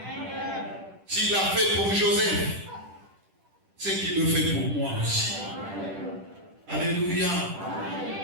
S'il l'a fait pour Joseph, c'est qu'il le fait pour moi aussi. Alléluia.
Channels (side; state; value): left; late; 10 ms